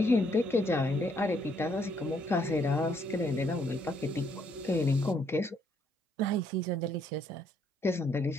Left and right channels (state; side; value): normal; both; correlation 0.70